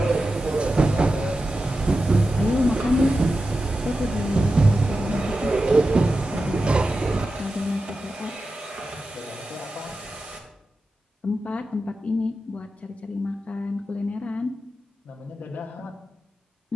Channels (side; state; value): both; normal; correlation 0.91